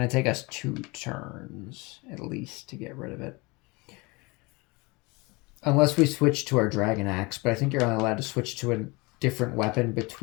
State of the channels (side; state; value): right; quieter; 25.7 dB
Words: to take us 2 turns at least to get rid of it. Unless we switch to our dragon axe, but I think you're only allowed to switch to a different weapon